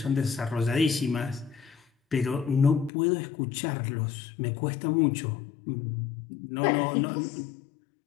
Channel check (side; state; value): right; drops out; at 2.9 s